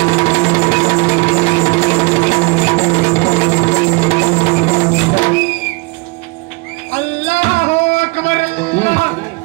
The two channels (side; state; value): left; quieter; 27.4 dB